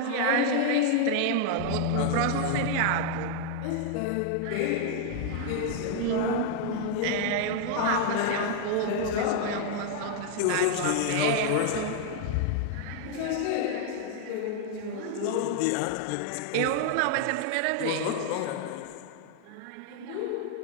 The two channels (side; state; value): both; different; correlation 0.00